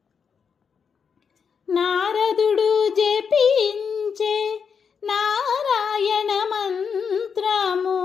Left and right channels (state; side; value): quieter; right; 6.4 dB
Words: నారదుడు జపించే నారాయణ మంత్రము